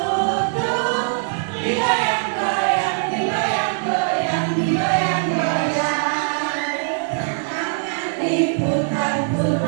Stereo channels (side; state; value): left; silent; digital silence